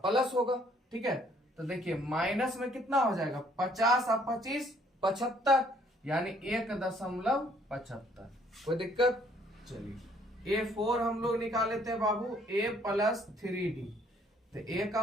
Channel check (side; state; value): both; normal; correlation 0.63